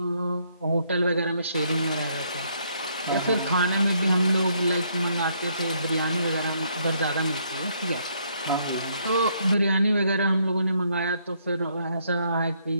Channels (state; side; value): inverted; both; correlation -0.71